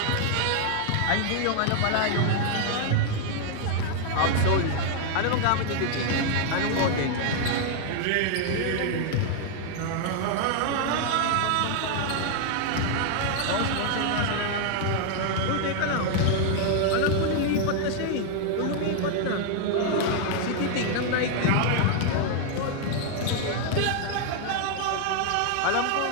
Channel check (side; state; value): both; different; correlation 0.00